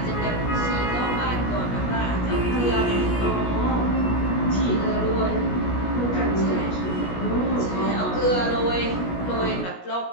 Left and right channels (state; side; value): late; right; 17 ms